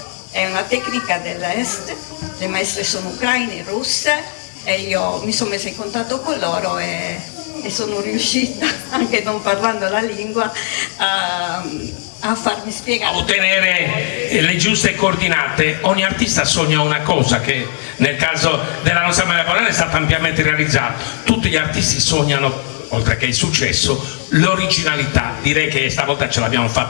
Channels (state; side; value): silent; right; digital silence